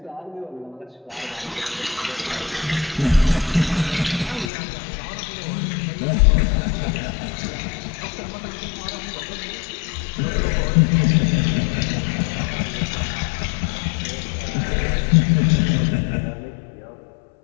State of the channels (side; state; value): right; drops out; at 4.5 s